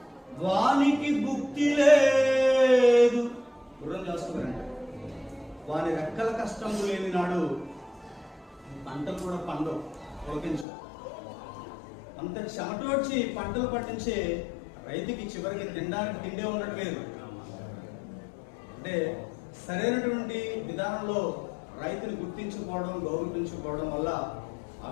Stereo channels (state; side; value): drops out; right; at 10.7 s